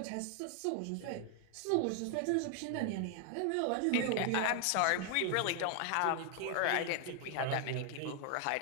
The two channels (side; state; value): both; different; correlation 0.00